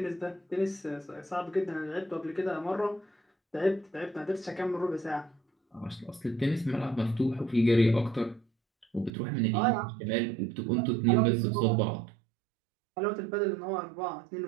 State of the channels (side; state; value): left; drops out; at 9.1 s